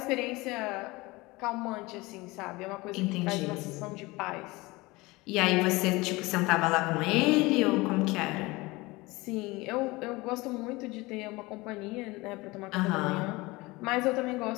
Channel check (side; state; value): right; quieter; 22.3 dB